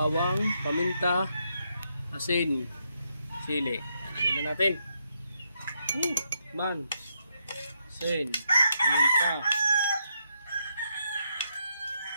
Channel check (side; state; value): both; inverted; correlation -0.79